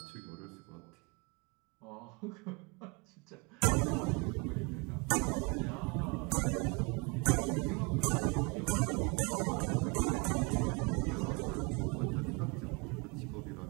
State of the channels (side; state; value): left; quieter; 29.5 dB